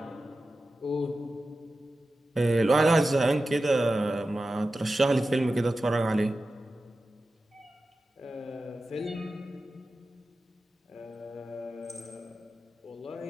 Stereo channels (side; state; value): both; normal; correlation 0.93